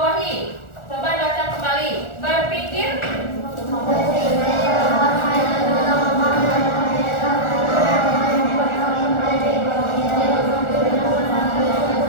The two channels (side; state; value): right; late; 1.4 ms